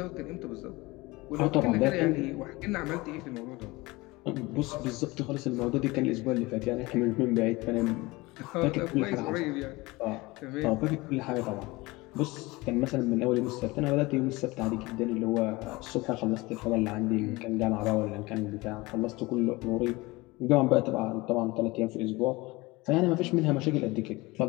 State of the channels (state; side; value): quieter; right; 22.1 dB